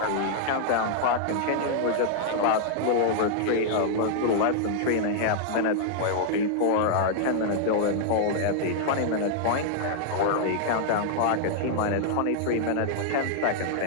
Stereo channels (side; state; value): both; different; correlation -0.01